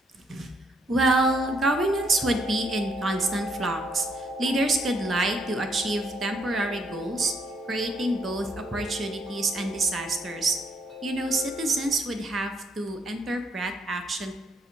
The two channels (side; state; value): both; normal; correlation 0.72